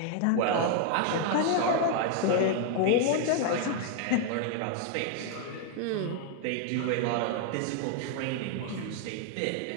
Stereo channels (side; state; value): both; different; correlation 0.00